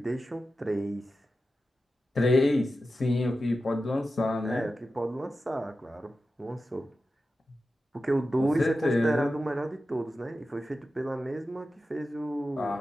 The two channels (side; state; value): both; normal; correlation 0.92